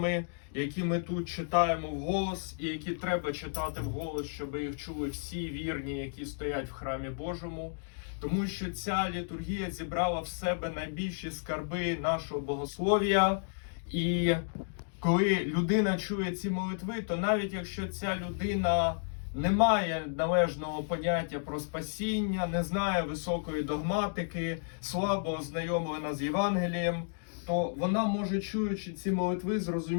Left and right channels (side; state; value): right; silent; digital silence